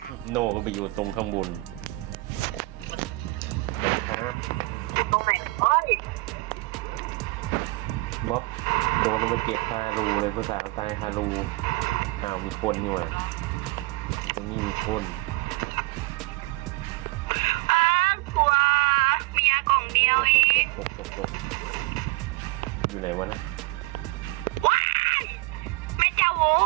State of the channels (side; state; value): left; quieter; 22.4 dB